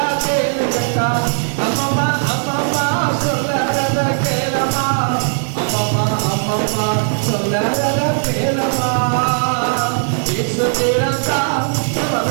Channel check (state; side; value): silent; left; 68 dB below the other